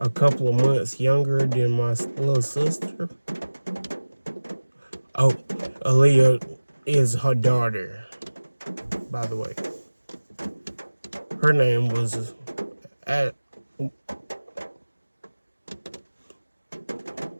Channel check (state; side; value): inverted; both; correlation -1.00